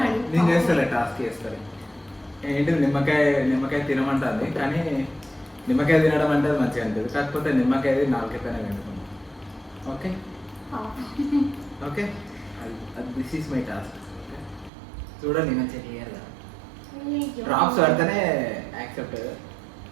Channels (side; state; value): left; drops out; at 14.7 s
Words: నేను చేస్తాలే, టాస్క్ చేస్తాను. ఏంటిది నిమ్మకాయ తినమంటుంది, కానీ నిమ్మకాయ తినడం అంటే అది మంచిగా ఉంటుంది. కాకపోతే నిమ్మకాయ నాలుగే పైన పెట్టుకున్నాం. Okay okay, this is my task. చూడండి మంచిగా క్లియర్ కదా. డ్రాప్స్ పడితేనే యాక్సెప్ట్.